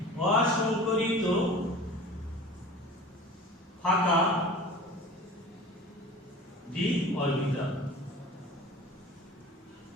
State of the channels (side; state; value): both; normal; correlation 0.40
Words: অসংকরিত ফাঁকা d অরবিটাল,